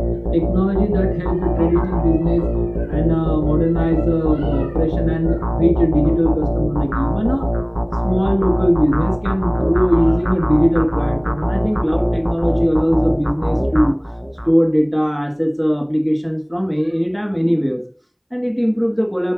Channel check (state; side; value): identical; both; correlation 1.00